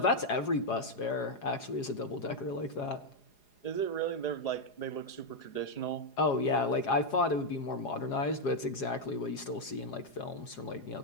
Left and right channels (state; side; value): late; right; 4.9 ms